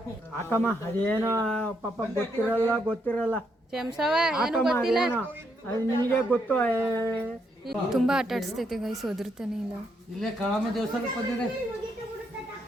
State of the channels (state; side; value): normal; both; correlation 0.77